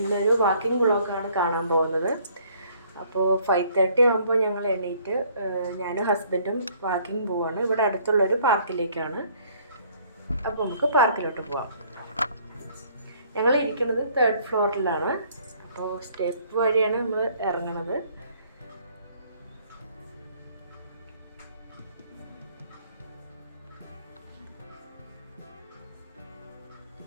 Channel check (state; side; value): inverted; both; correlation -0.61